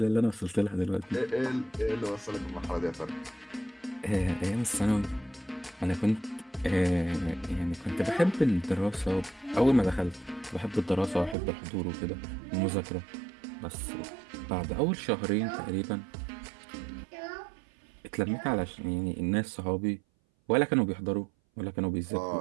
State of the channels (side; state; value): left; drops out; at 11.4 s